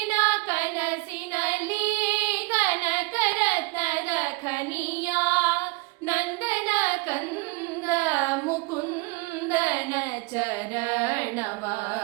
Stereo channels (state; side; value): quieter; left; 26.3 dB